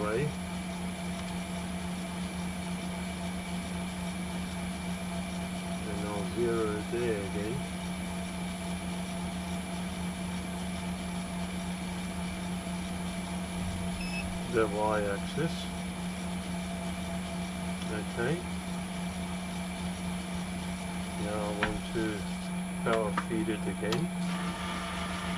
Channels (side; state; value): both; identical; correlation 1.00